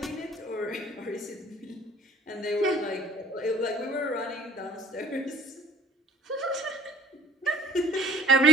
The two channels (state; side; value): normal; both; correlation 0.52